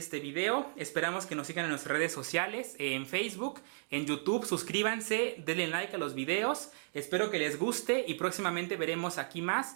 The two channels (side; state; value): left; silent; digital silence